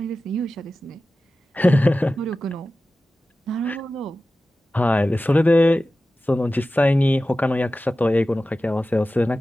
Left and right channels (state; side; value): normal; both; correlation 0.95